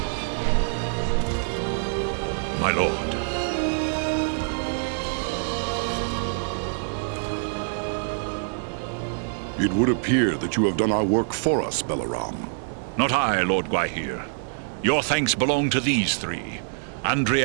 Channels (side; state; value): left; silent; digital silence